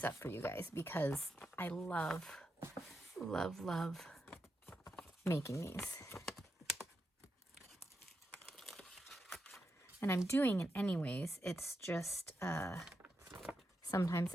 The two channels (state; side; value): normal; both; correlation 0.86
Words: up for you guys, because I love, love, love making these. And I'm doing it anyways. It's just, sometimes